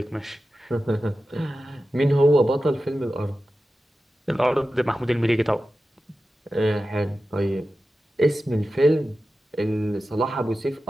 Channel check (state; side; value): normal; both; correlation 0.93